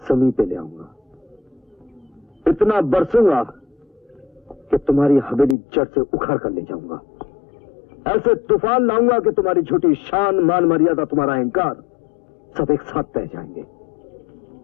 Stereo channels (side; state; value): right; drops out; at 5.6 s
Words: जमीन पे ले आऊंगा, इतना बरसूंगा कि तुम्हारी हवेली जड़ से उखाड़ कर ले जाऊंगा। ऐसे तूफान लाऊंगा कि तुम्हारी झूठी शान, मान मर्यादा, तुम्हारा अहंकार सब एक साथ बह जाएंगे।